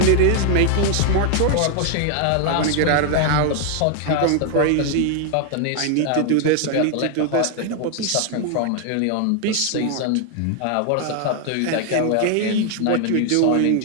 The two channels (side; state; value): both; different; correlation 0.00